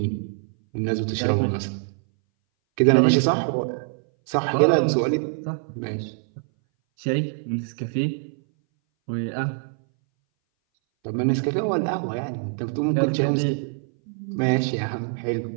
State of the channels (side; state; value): left; silent; 60 dB below the other